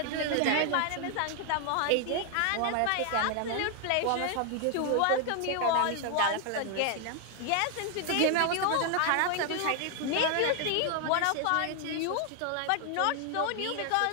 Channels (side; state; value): both; different; correlation 0.00